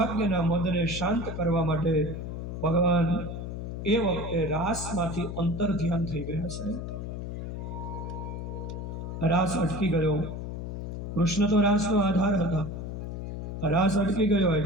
મદને શાંત કરવા માટે ભગવાન એ વખતે રાસમાંથી અંતર ધ્યાન થઈ ગયા છે. રાસ અટકી ગયો. કૃષ્ણ તો રાસનો આધાર હતા. રાસ અટકી ગયો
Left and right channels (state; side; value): noise; left; hum, 6 dB below the sound